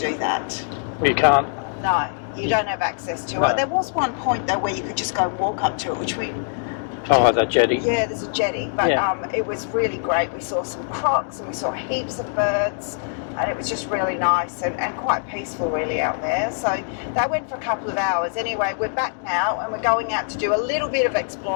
that. You can't. No, you don't have access to it. There was one point though where you could just go and walk up to it, which we... Oh, the jetty. Yeah, there's a jetty, but Yeah. it was really great. We saw some crocs and we saw heaps of birds, and it was just really nice and quite peaceful really out there. So that went for a couple of hours. Anyway, we're back now and we're going out to do a little bit of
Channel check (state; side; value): silent; right; digital silence